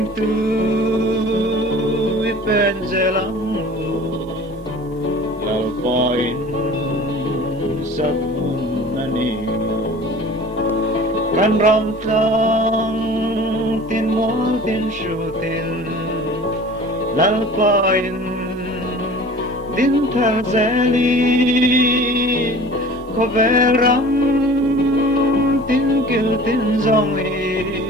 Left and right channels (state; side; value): normal; both; correlation 0.43